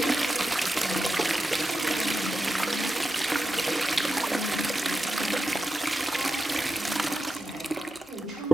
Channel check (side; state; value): both; normal; correlation 0.90